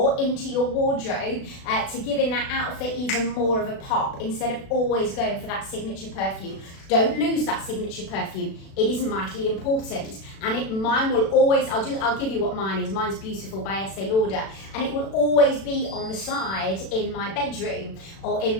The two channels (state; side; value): late; right; 36 ms